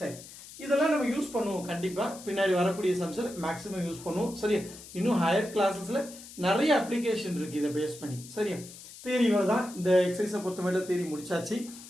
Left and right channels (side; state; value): left; noise; hiss, 16 dB below the sound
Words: இதெல்லாம் நம்ம யூஸ் பண்ணுவோம் கண்டிப்பாக. பின்னாடி வரக்கூடிய சம்ஸில் மேக்ஸிமம் யூஸ் பண்ணுவோம். சரியா? இன்னும் ஹையர் கிளாஸஸில் நிறைய அப்ளிகேஷன் இருக்குது இதை பேஸ் பண்ணி. சரியா? தியரி தான். இந்த எக்ஸசைஸை பொறுத்தவரை தியரி முடிச்சாச்சு.